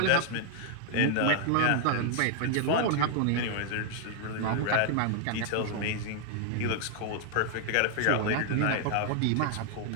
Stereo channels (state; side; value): different; both; correlation 0.00